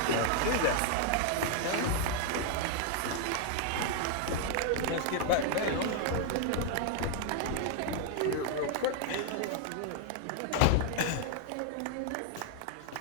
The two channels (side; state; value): both; different; correlation 0.00